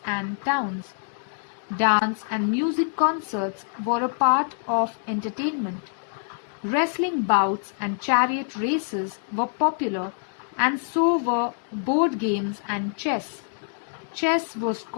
and towns. Dance and music concerts were a part of entertainment. Wrestling bouts and chariot races were popular, and so were board games and chess. Chess was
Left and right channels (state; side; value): silent; right; digital silence